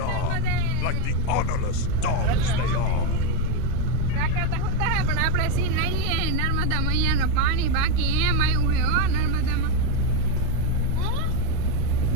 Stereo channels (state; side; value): different; both; correlation 0.04